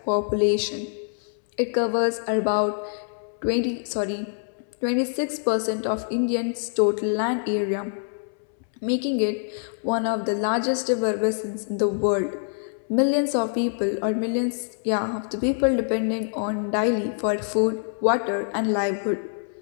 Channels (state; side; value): silent; right; 62 dB below the other